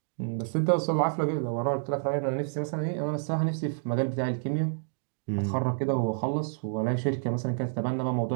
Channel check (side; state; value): left; silent; digital silence